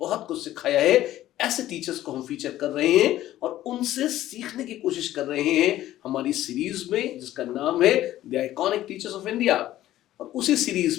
कुछ सिखाया है। ऐसे टीचर्स को हम फीचर कर रहे हैं और उनसे सीखने की कोशिश कर रहे हैं हमारी सीरीज में, जिसका नाम है the iconic teachers of India. और उसी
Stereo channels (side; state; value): right; quieter; 14.0 dB